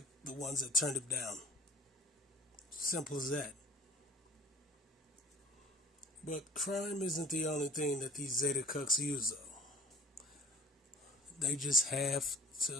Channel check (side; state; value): both; normal; correlation 0.51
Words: the ones that turned him down. Simple as that. But crime isn't the only thing that these Zeta cucks use, though. They just have